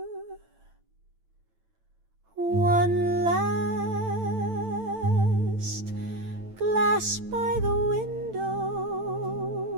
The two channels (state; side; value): late; left; 9.0 ms